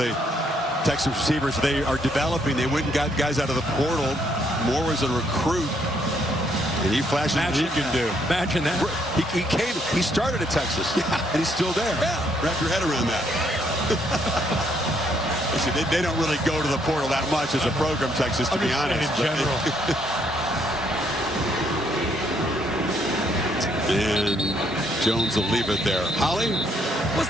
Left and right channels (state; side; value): normal; both; correlation 0.71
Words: Texas receivers they are developing. They went and got guys out of the portal. Moore was a recruit, and he flashed what he can do. Imagine that. He started at Texas, and he's still there. Yeah. Wrap your head around that. See, they don't really go to the portal that much as a program, Texas, to be honest. In general. And Jones will leave it there. Holly? Well,